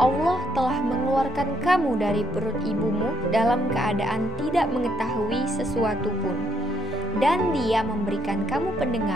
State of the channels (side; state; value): both; normal; correlation 0.72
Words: telah mengeluarkan kamu dari perut ibumu dalam keadaan tidak mengetahui sesuatu pun, dan Dia memberikan kamu